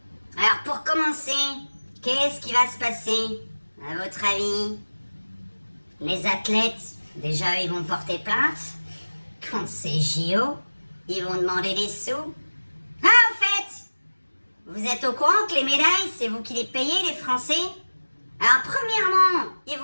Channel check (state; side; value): inverted; both; correlation -1.00